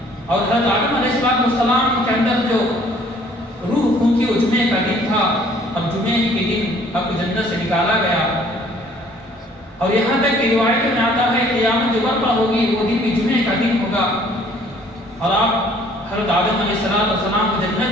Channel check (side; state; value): both; normal; correlation 0.58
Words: اور حضرت آدم علیہ السلام کے اندر جو روح پھونکی وہ جمعے کا دن تھا، اور جمعے کے دن اب جنت سے نکالا گیا۔ اور یہاں تک کہ روایتوں میں آتا ہے کہ قیامت جو برپا ہوگی وہ دن بھی جمعے کا دن ہوگا، اور آپ حضرت آدم علیہ السلام کو